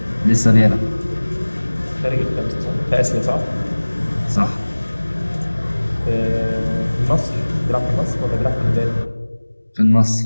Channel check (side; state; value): both; inverted; correlation -1.00